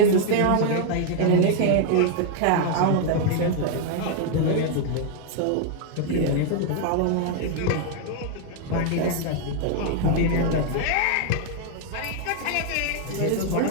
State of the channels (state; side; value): different; both; correlation 0.00